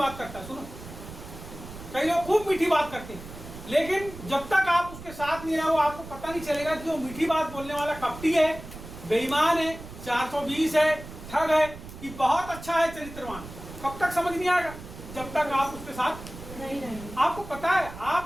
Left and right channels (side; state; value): right; noise; rumble, 14 dB below the sound